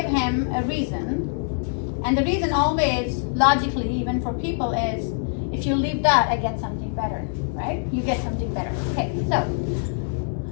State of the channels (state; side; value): silent; right; digital silence